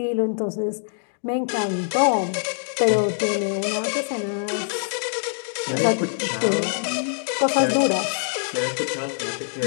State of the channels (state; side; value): silent; right; digital silence